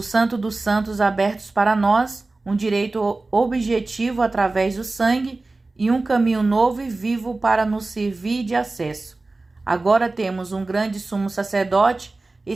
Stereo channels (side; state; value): left; quieter; 3.3 dB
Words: dos Santos abertos para nós, um direito objetivo através do sangue e um caminho novo e vivo para nos servir de acesso. Agora temos um grande sumo sacerdote